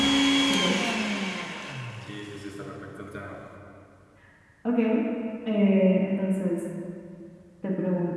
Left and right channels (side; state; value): both; identical; correlation 1.00